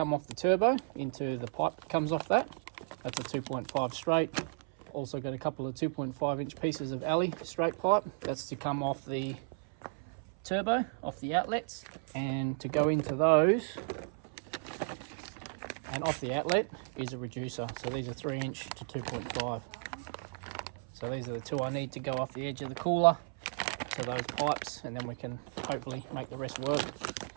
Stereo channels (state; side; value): silent; left; 55 dB below the other